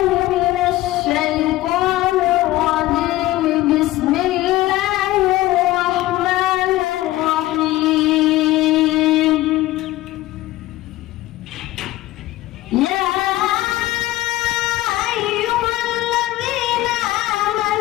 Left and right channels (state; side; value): quieter; right; 16.8 dB